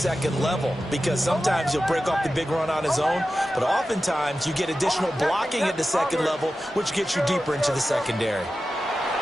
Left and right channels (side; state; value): both; normal; correlation 0.93